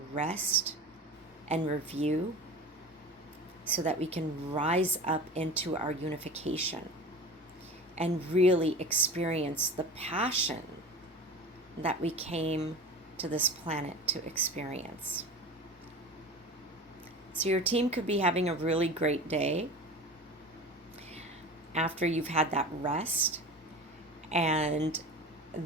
and review, so that we can rise up into our unification, and really experience the passion that we came to this planet to experience. So your team could be having a really great day after you've had that rest, and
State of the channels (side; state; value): both; normal; correlation 0.34